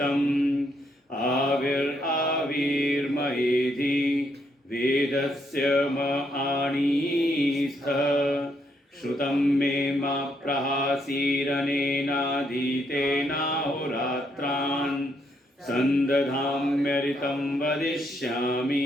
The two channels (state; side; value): normal; both; correlation 0.75